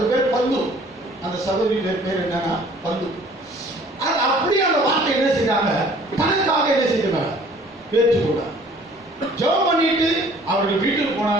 பேர் பந்து. அந்த சகோதரி பேர் என்னன்னா பந்து. அது அப்படியே அந்த வார்த்தை என்ன செய்தாங்க, தனக்காக என்ன செய்தாங்க, பேச்சுக்கூட ஜெபம் பண்ணிட்டு அவர்கள் வீட்டுக்கு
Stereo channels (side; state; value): both; normal; correlation 0.53